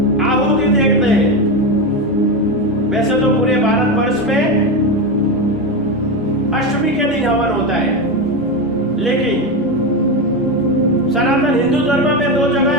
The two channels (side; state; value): both; normal; correlation 0.15